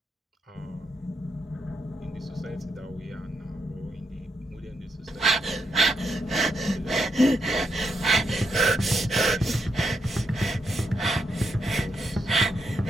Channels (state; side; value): normal; both; correlation 0.80